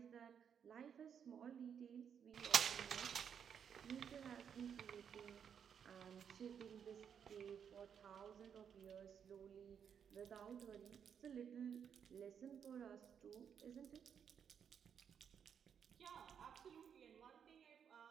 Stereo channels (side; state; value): left; quieter; 7.8 dB